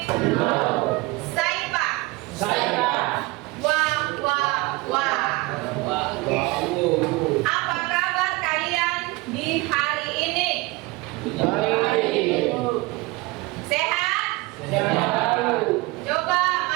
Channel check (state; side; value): quieter; left; 22.5 dB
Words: Saipa. Wah. Apa kabar kalian di hari ini? Sehat? Coba